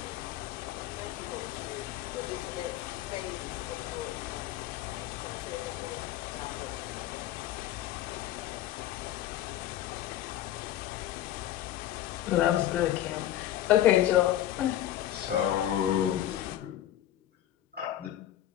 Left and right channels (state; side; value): quieter; right; 12.7 dB